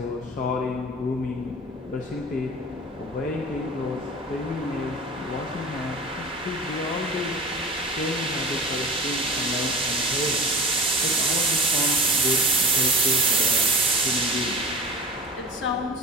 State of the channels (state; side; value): normal; both; correlation 0.33